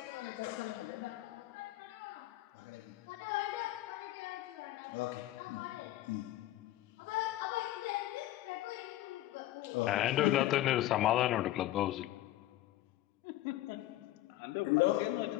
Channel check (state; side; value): quieter; right; 15.0 dB